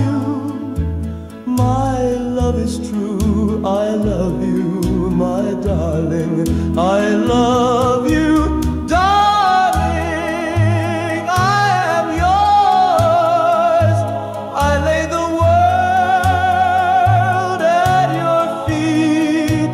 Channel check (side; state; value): both; identical; correlation 1.00